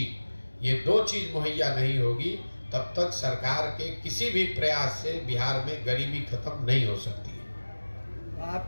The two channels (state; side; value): inverted; both; correlation -1.00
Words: ये दो चीज मुहैया नहीं होगी तब तक सरकार के किसी भी प्रयास से बिहार में गरीबी खत्म नहीं हो सकती है।